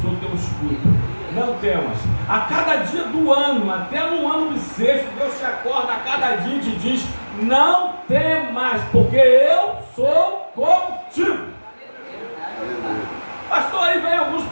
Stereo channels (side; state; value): both; inverted; correlation -1.00